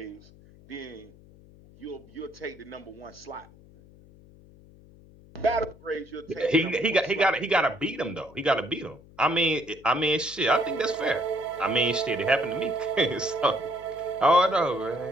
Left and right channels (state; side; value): noise; left; hum, 24 dB below the sound